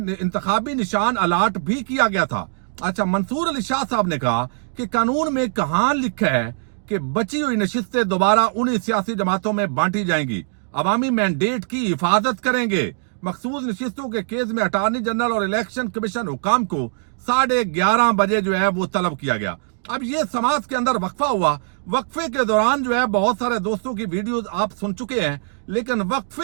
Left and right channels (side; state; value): left; silent; 63 dB below the other